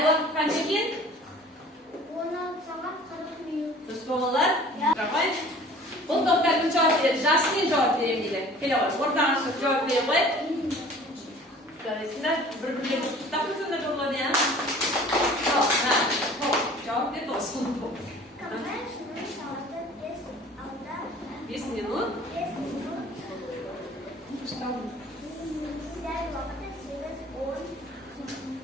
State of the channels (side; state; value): both; normal; correlation 0.48